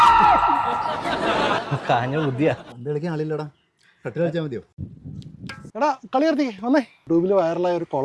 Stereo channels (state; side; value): identical; both; correlation 1.00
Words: കാഞ്ഞ ബുദ്ധിയാ. പണ്ട് കളിക്കാൻ ആളില്ലടാ, കട്ടിൽ കളിച്ചാൽ മതിയോ? എടാ കളി നിർത്തി വന്നേ. ട്യൂബിൽ വൈറലായ ഒരു